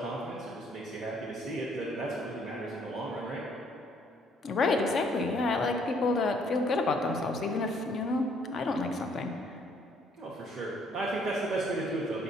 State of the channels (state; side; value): normal; both; correlation 0.65